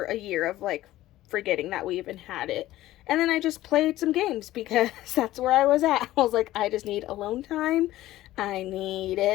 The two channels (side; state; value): right; quieter; 15.4 dB